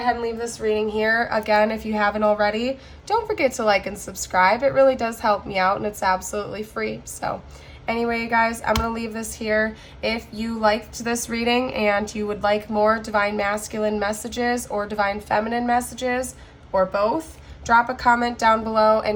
and leave this reading here. Again, if you haven't already, don't forget to like and subscribe. It really does help me out, and it's absolutely free. So anyway, you guys, I'm going to leave this here. If you liked this reading and you would like more Divine Masculine messages or Divine Feminine messages, or both, drop a comment down below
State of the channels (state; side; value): identical; both; correlation 1.00